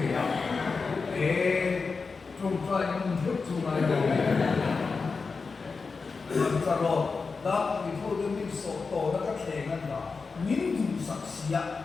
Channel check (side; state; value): right; quieter; 4.6 dB